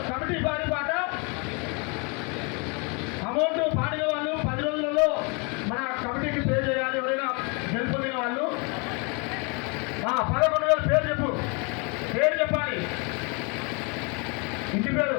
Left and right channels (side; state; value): right; quieter; 32.5 dB